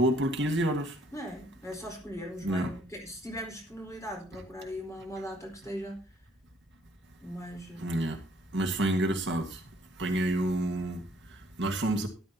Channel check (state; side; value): normal; both; correlation 0.63